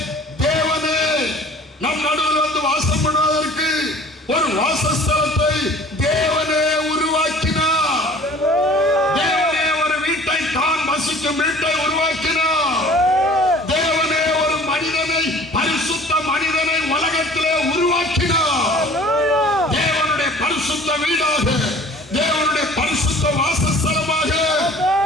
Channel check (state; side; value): normal; both; correlation 0.47